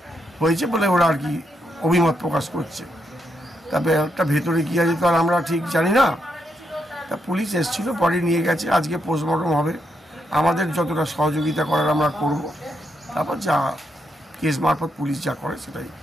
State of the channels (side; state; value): both; normal; correlation 0.80